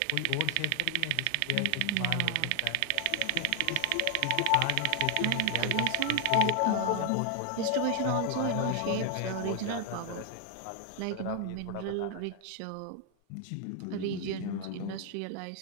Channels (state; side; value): different; both; correlation 0.00